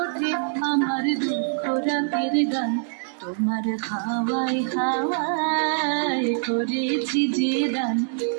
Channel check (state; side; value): silent; left; digital silence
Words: ওঠে আমার দুঃখ রাতের গান। তোমার হাওয়ায় হাওয়ায় করেছি যে দান,